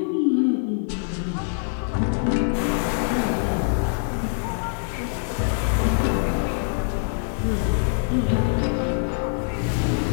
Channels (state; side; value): silent; right; 59 dB below the other